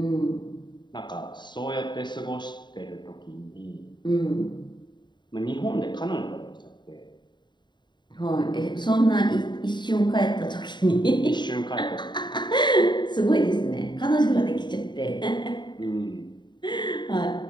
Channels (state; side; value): late; right; 0.22 ms